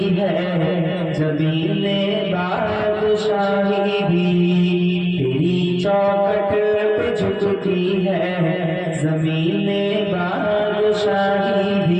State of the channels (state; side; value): identical; both; correlation 1.00